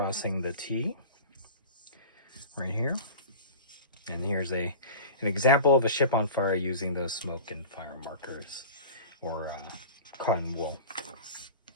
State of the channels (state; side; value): inverted; both; correlation -0.36